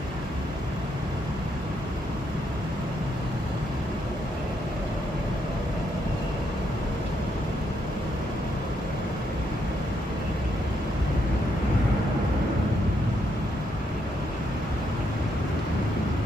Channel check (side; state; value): both; normal; correlation 0.76